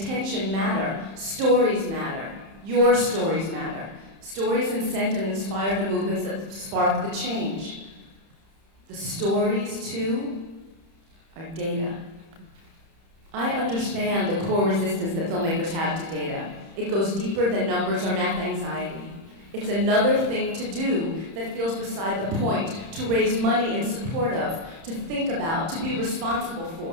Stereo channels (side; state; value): left; late; 30 ms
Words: matter. Stories matter. Your stories matter. Stories incent and inspire the movements that spark the change. The stories, too, are data. I understand the core resistance that filmmakers have to data. It goes deeper than numbers or math anxiety. It's another thing to do that feels beside the point, to raise money in support of, to think about, to be responsible